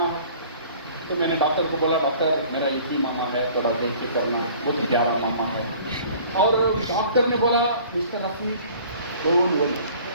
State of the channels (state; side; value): inverted; both; correlation -0.50